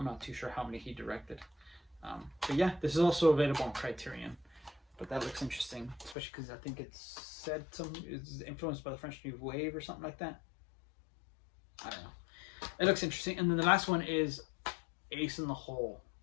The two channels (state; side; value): drops out; right; at 6.2 s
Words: not too sure how many he directed. But yeah, this is also available on Criterion. But that looks interesting, especially because I think it's said it's influenced by the French New Wave or something like that. I don't know. It looks interesting. And then the last one is Ace in the Hole,